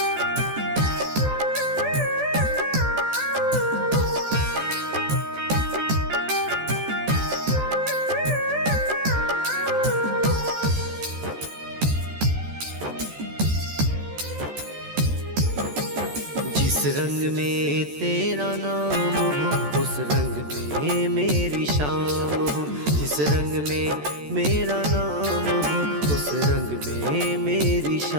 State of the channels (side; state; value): left; late; 14 ms